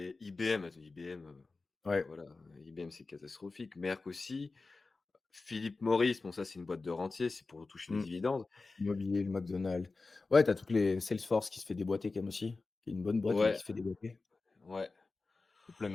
IBM, IBM, bah Ouais. voilà, IBM c'est catastrophique. Merck aussi. Philip Morris, bon ça c'est une boîte de rentier, c'est pour toucher les Mmh. dividendes. Immobilier, le McDonald's. Ouais, tu as toutes les Salesforce qui se fait déboîter quand même aussi, qui est une bonne boîte, mais qui Ouais, se fait déboîter. ouais. Plein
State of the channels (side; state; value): right; quieter; 3.8 dB